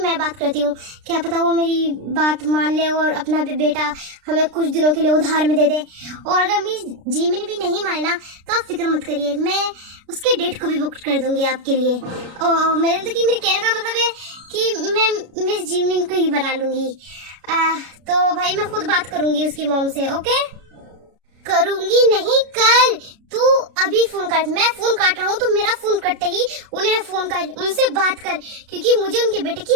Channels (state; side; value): late; left; 33 ms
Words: बात करती हूँ। क्या पता वो मेरी बात मान ले और अपना भी बेटा हमें कुछ दिनों के लिए उधार में दे दे। और अगर मेरी जीमिन भी नहीं माने ना, तो आप फिक्र मत करिए, मैं उसके डेट को भी बुक कर दूंगी आपके लिए। और मेरे कहने का मतलब है कि मैं मिस जिमिन को ही बना लूंगी। तो भाई मैं खुद बात करूंगी उसकी मॉम से। ओके? करूंगी नहीं, कर। तू अभी फोन कर, मैं फोन काट रहा हूँ, तो मेरा फोन कटते ही उन्हें फोन कर, उनसे बात कर, क्योंकि मुझे उनके बेटे की